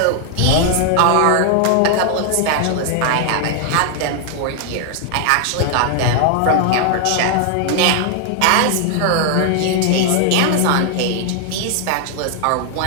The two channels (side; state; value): both; different; correlation 0.00